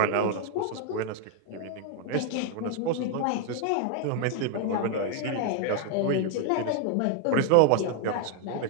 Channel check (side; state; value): both; different; correlation 0.01